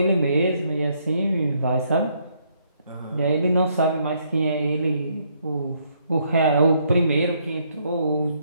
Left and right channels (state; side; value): inverted; both; correlation -0.71